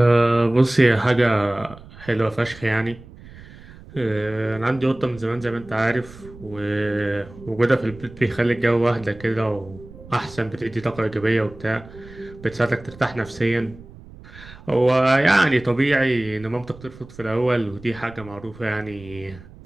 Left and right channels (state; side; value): noise; right; rumble, 19 dB below the sound